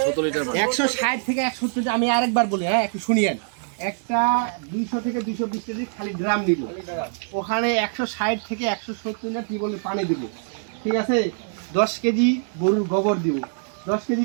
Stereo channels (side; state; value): left; silent; 63 dB below the other